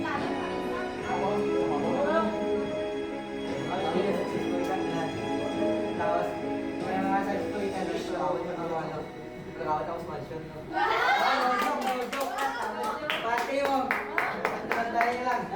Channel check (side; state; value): left; noise; rumble, 27 dB below the sound